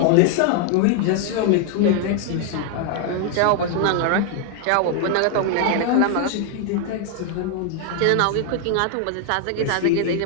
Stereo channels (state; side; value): different; both; correlation 0.00